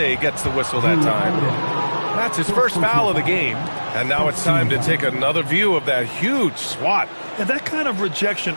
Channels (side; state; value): both; inverted; correlation -1.00